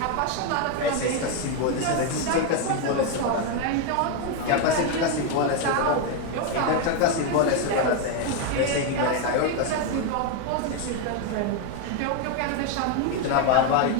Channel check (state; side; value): different; both; correlation 0.01